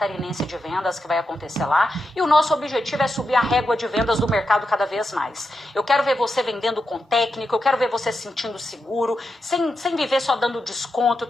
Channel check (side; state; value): both; normal; correlation 0.87